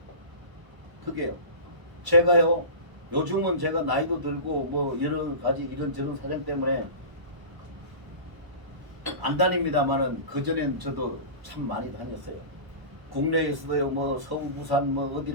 그게요. 제가요 요즘은 제가 나이도 들고 뭐 여러 가지 이런저런 사정 때문에 안 다닙니다만은, 그전엔 저도 참 많이 다녔어요. 국내에서도요 뭐 서울 부산 뭐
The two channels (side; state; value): left; late; 1.0 ms